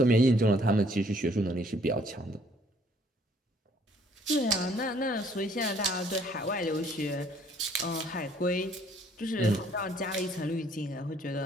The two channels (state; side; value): normal; both; correlation 0.62